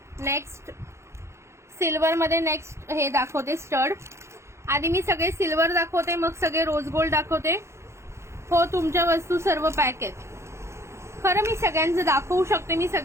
नेक्स्ट सिल्वर मध्ये नेक्स्ट हे दाखवते स्टड. आधी मी सगळे सिल्वर दाखवते मग सगळे रोज गोल्ड दाखवते. हो तुमच्या वस्तू सर्व पॅक आहेत. खरं मी सगळ्यांचं दाखवू शकते, मी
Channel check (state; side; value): late; left; 0.13 ms